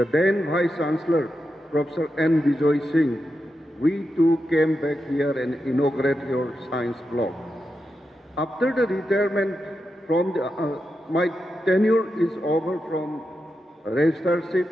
then Vice Chancellor, Professor N. Bijoy Singh, we too came back here and inaugurated your science block. After the retirement from the, my tenure is over from registrarship,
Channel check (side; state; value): both; normal; correlation 0.88